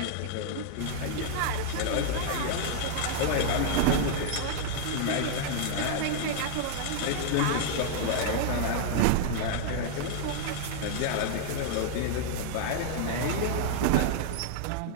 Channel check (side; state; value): both; different; correlation -0.01